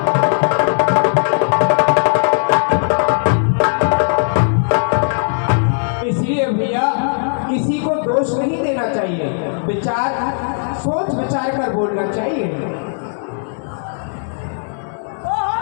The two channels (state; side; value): silent; right; digital silence